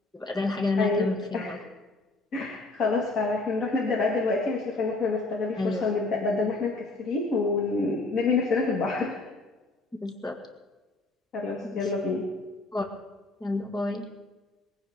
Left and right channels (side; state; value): right; quieter; 3.1 dB